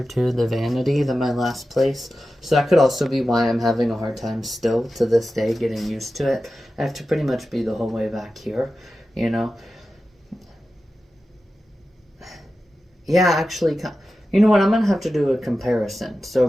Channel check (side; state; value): both; normal; correlation 0.93